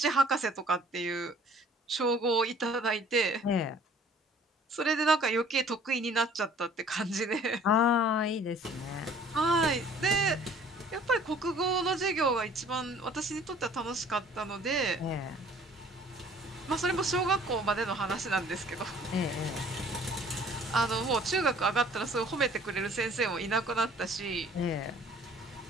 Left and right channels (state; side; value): normal; both; correlation 0.53